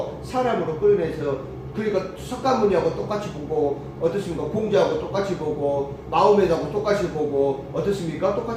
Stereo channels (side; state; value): both; identical; correlation 1.00